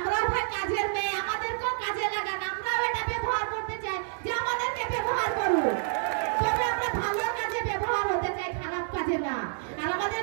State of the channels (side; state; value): left; silent; digital silence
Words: ভাই কাজের মেয়ে, আমাদেরকেও কাজে লাগান, আমরাও এটা ব্যবহার করতে চাই যে আমাদেরকে ব্যবহার করুন, তবে আমরা ভালো কাজে ব্যবহার হতে চাই, খারাপ কাজে না। আর আমাদের